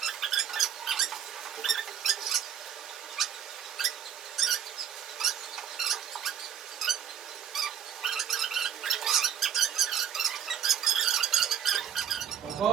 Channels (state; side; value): quieter; left; 9.1 dB